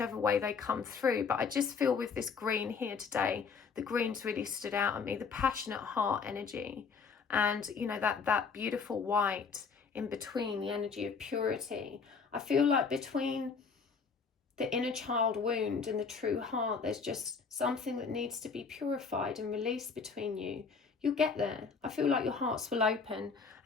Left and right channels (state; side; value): quieter; right; 5.4 dB